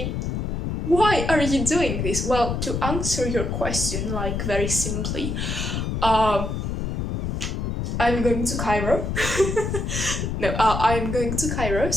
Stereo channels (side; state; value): left; noise; rumble, 2 dB below the sound